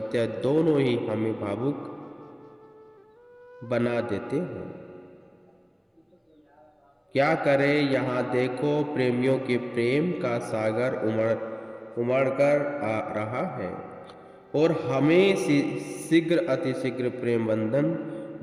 दोनों ही हमें भावुक बना देते हैं। क्या करें, यहाँ देखो प्रेमियों के प्रेम का सागर उमड़ कर आ रहा है और हमें शीघ्र अतिशीघ्र प्रेम बंधन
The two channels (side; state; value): both; identical; correlation 1.00